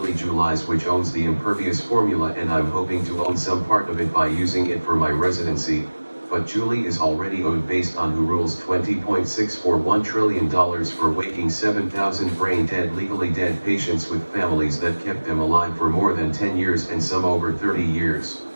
Julies, which owns the Impervious formula, and I'm hoping to own some part of it by using it for my residency. But Julie is already owed based on who rules $20.641 trillion for waking 7,000 brain-dead, legally dead patients with families that kept them alive for more than 10 years and some over 30 years.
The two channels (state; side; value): inverted; both; correlation -1.00